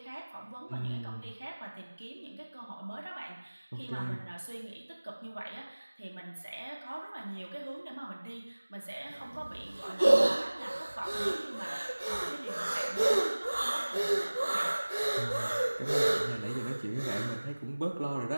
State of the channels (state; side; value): inverted; both; correlation -1.00